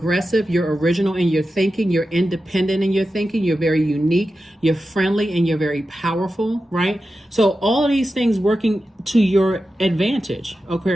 You're original in your thinking. You're independent in your thinking. You're very unique. You're friendly, and you're very powerful, right? So all of these things working to your advantage,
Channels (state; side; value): normal; both; correlation 0.92